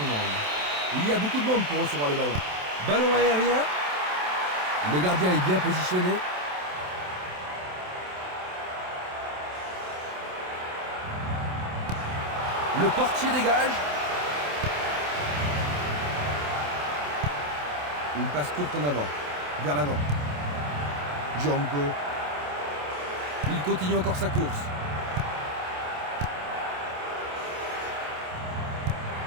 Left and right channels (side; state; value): left; late; 27 ms